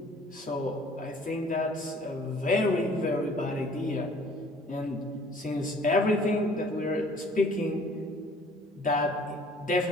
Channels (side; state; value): both; normal; correlation 0.54